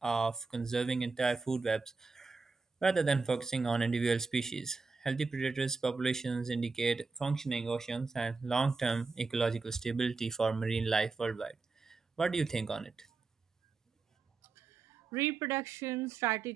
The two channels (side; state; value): left; quieter; 4.2 dB